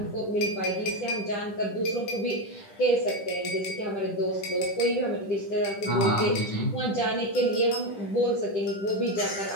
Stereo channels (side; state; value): right; late; 10 ms